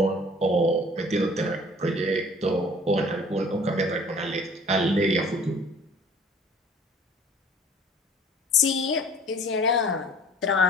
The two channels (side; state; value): both; normal; correlation 0.50